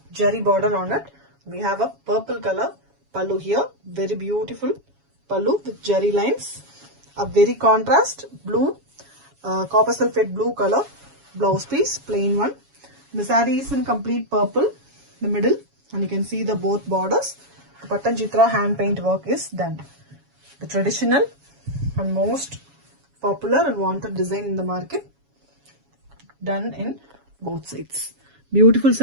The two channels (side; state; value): left; late; 7.2 ms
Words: jerry border on it. We have a purple color pallu here, very beautiful pallu with jerry lines, a very contrast blue, copper sulphate blue color blouse piece, plain one. The saree is in complete purple, the middle, and you can see the both borders. The Patanjitra hand paint work is done. The traditional and most popular and wanted design in the market, done in both sides. Beautiful